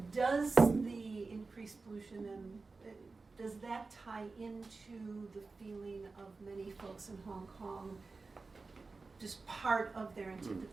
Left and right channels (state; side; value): quieter; left; 4.0 dB